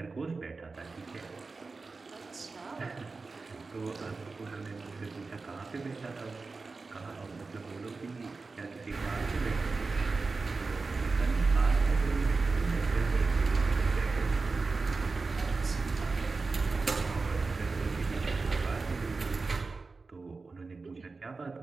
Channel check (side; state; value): left; quieter; 4.0 dB